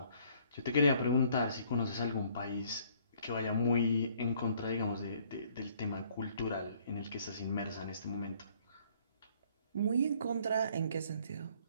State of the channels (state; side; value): inverted; both; correlation -0.62